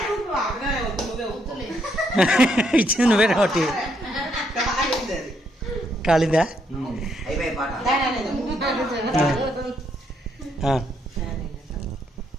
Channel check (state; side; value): normal; both; correlation 0.74